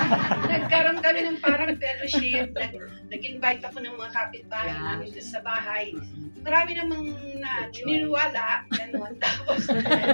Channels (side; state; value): both; inverted; correlation -1.00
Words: Nagkaroon kami ng parang fellowship. Nag-invite ako ng mga kapitbahay namin sa bahay. Marami namang niniwala. Ganun. Tapos,